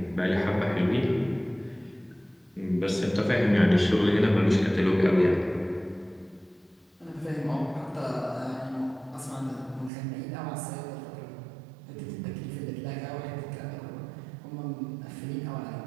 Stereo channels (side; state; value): left; drops out; at 9.9 s